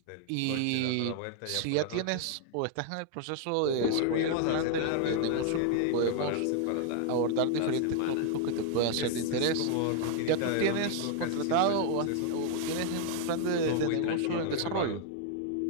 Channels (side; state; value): both; different; correlation 0.00